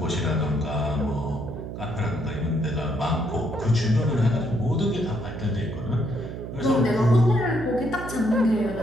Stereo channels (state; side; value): noise; right; hum, 8 dB below the sound